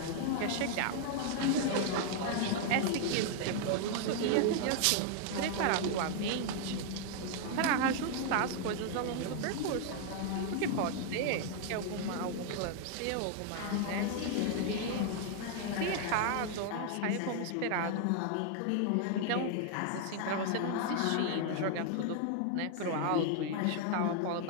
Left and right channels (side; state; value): both; different; correlation 0.00